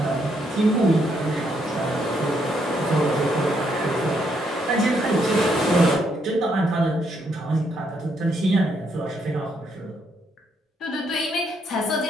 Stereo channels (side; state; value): both; normal; correlation 0.74